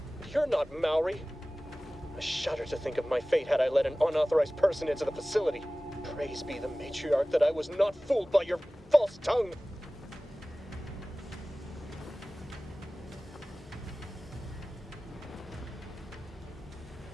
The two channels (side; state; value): both; normal; correlation 0.98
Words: You're not Maori. I shudder to think of my fate had I let an unauthorized person into the facility. Praise be the matriarch that I was not fooled by your false tongue.